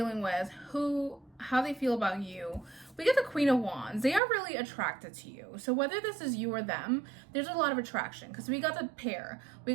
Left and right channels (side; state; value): left; drops out; at 4.2 s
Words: with, how they feel about you, we get the Queen of Wands. They are really attracted to you. So whether this is you or them, there's a lot of attraction, because we got the pair. We